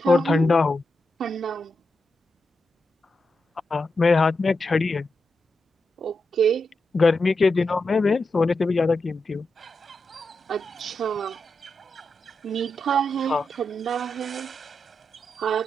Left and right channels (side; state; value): both; normal; correlation 0.87